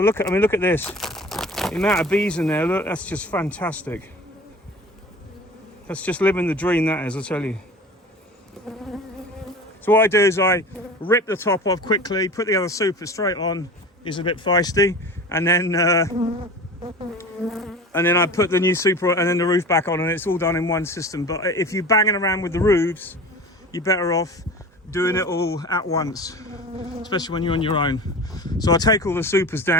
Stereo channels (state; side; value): normal; both; correlation 0.36